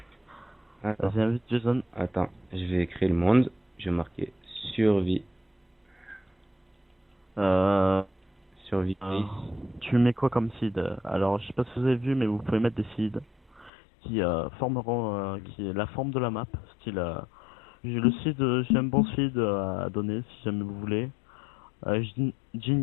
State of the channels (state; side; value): drops out; right; at 13.7 s